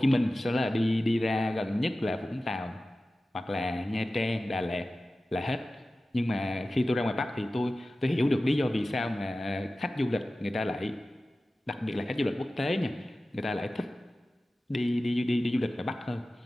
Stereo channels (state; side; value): normal; both; correlation 0.96